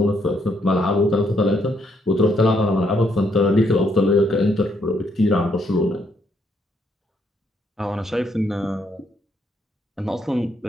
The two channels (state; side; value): normal; both; correlation 0.73